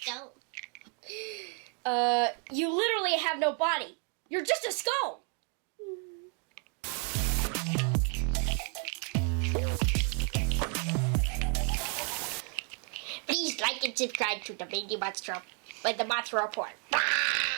You literally have no body. You're just a skull. Please like and subscribe to the Monster Report.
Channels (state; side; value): quieter; left; 37.6 dB